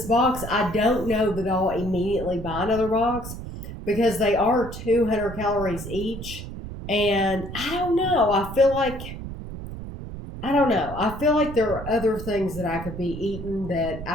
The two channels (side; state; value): right; noise; rumble, 10 dB below the sound